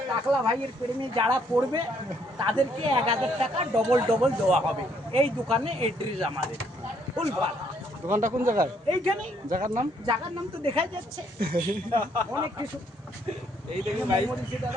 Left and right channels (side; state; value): both; normal; correlation 0.69